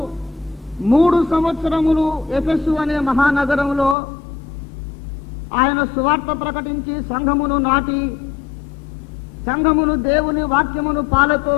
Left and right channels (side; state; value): right; drops out; at 4.0 s